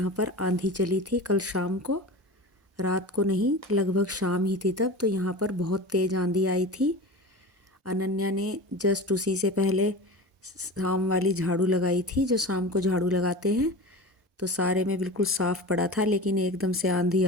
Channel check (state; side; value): normal; both; correlation 0.31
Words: पर आंधी चली थी। कल शाम को, रात को नहीं, लगभग शाम ही थी तब, तो यहाँ पर बहुत तेज़ आंधी आई थी। अनन्या ने जस्ट उसी से पहले शाम वाली झाड़ू लगाई थी, जो शाम को झाड़ू लगाते हैं, तो सारे में बिल्कुल साफ़ पड़ा था, लेकिन एकदम से आंधी